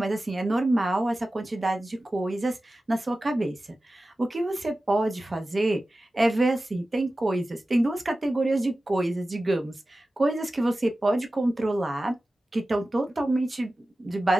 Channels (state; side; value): normal; both; correlation 0.95